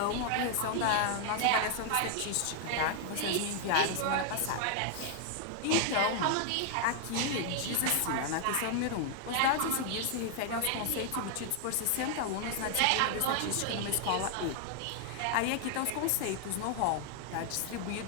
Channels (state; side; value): different; both; correlation 0.00